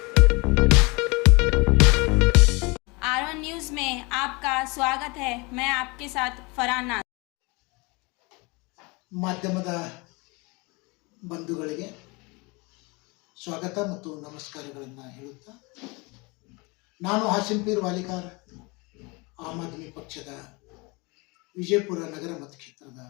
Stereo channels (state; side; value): quieter; right; 27.2 dB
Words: R1 न्यूज में आपका स्वागत है। मैं आपके साथ फरहान नाज। ಮಾಧ್ಯಮದ ಬಂಧುಗಳಿಗೆ ಸ್ವಾಗತ ಮತ್ತು ನಮಸ್ಕಾರಗಳನ್ನು ಹೇಳುತ್ತಾ, ನಾನು ಹಸೀಂಪೀರ್ ವಾಲಿಕಾರ್, ಆಮ್ ಆದ್ಮಿ ಪಕ್ಷದ ವಿಜಯಪುರ ನಗರ ಮತಕ್ಷೇತ್ರದ